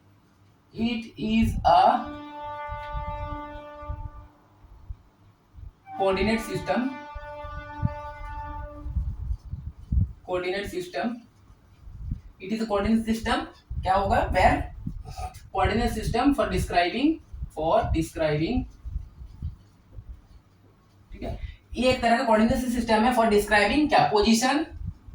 it is a coordinate system, coordinate system, it is a coordinate system, क्या होगा, where coordinate system for describing, ठीक है, ये एक तरह का कोऑर्डिनेट सिस्टम है फॉर डिस्क्राइबिंग क्या,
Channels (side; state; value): both; identical; correlation 1.00